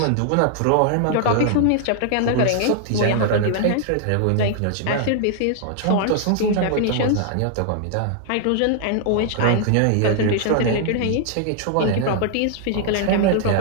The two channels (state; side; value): different; both; correlation 0.00